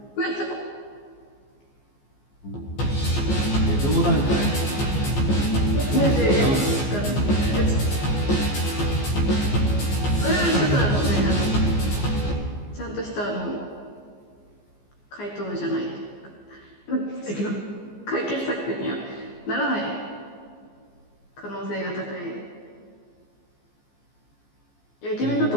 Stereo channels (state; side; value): late; right; 15 ms